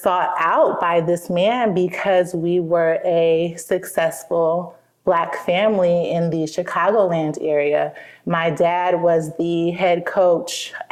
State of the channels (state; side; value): identical; both; correlation 1.00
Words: out by this man because we were a successful Black family in the Chicagoland area. My dad was the head coach